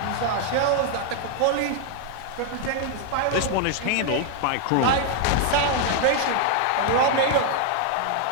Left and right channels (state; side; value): different; both; correlation 0.00